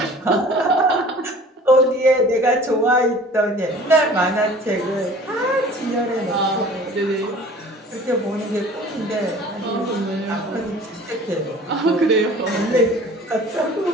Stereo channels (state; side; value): normal; both; correlation 0.46